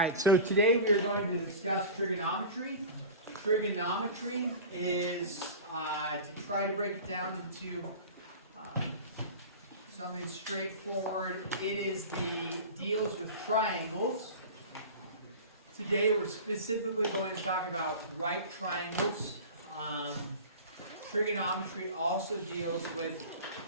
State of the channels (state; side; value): inverted; both; correlation -0.34